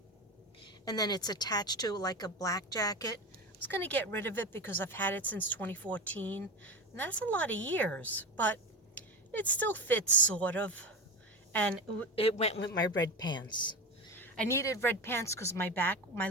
And then it's attached to like a black jacket. I was going to get rid of it because I've had it since 2014. And that's a lot of years. But it still fits, sort of. And it went with my red pants. I needed red pants because my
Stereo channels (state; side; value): normal; both; correlation 0.22